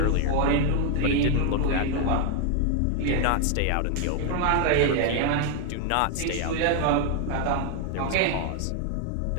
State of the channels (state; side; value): different; both; correlation 0.00